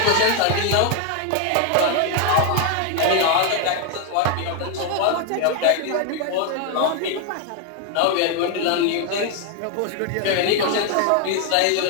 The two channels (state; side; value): different; both; correlation 0.01